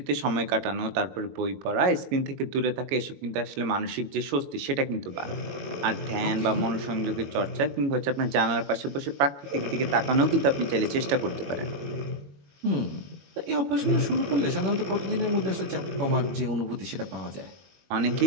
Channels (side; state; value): left; late; 22 ms